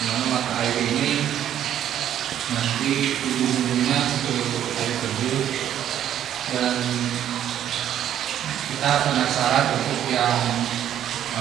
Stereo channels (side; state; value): left; quieter; 10.7 dB